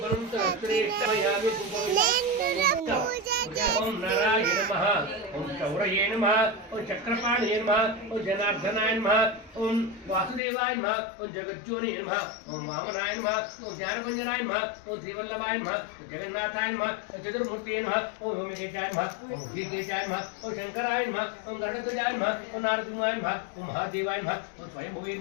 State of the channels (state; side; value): drops out; right; at 10.4 s